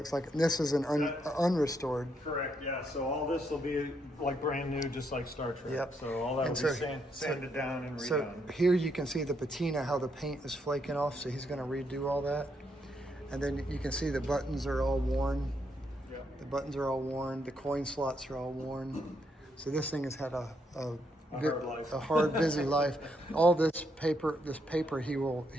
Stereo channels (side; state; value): both; normal; correlation 0.76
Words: like, this is an unrestored. Correct, yeah. So all this will be like brand new, just like Star Trek. Yep. So all that will be sanded down and redone. So here you can see the patina, how the paint is flaking off. So he's going to redo all that. And then you can see the buttons are all worn. Yep. The buttons are all worn. The coin slots are all worn. So this thing has had a hard life. A hard, busy life. All this paper he will